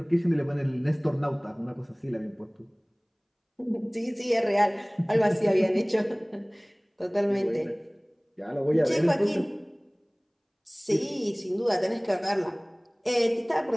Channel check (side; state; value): both; identical; correlation 1.00